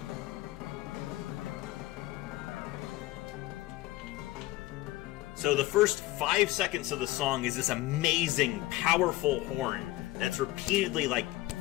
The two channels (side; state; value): right; quieter; 17.6 dB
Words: So the first 5 seconds of the song is this amazing, powerful horn that's repeatedly like